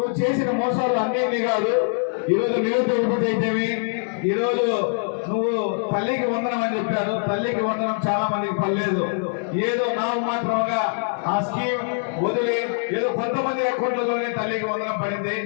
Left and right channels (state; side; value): silent; right; 63 dB below the other